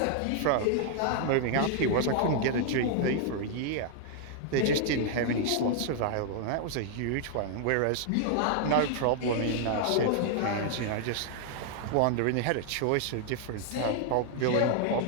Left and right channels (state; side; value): different; both; correlation 0.00